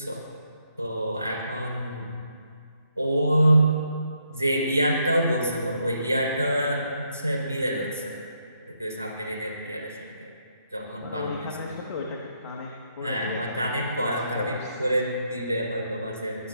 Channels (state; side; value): inverted; both; correlation -0.76